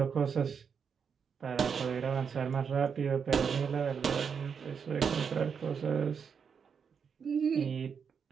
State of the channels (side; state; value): left; quieter; 6.5 dB